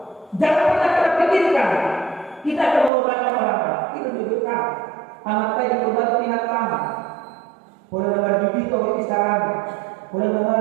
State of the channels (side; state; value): left; drops out; at 2.9 s